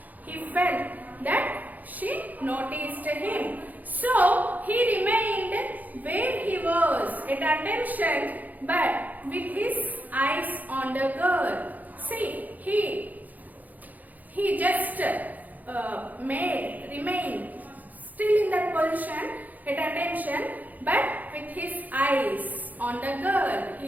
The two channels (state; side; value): late; left; 0.081 ms